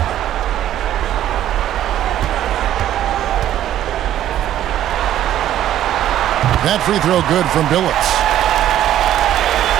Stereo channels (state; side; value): quieter; left; 12.0 dB